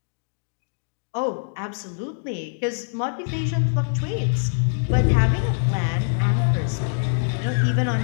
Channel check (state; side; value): silent; right; digital silence